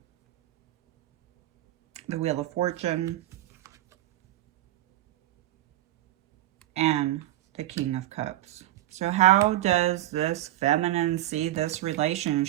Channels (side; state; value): left; quieter; 14.8 dB